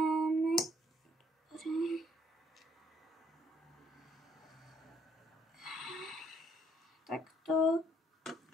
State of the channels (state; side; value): normal; both; correlation 0.66